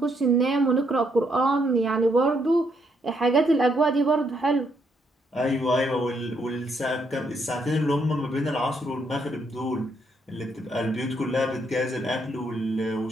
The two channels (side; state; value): both; normal; correlation 0.75